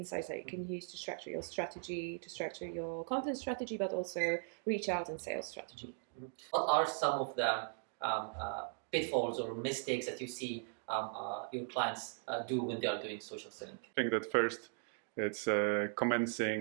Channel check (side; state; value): left; silent; 52 dB below the other